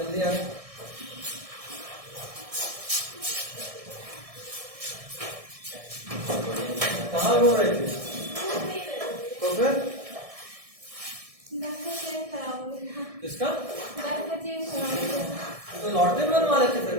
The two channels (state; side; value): late; left; 1.6 ms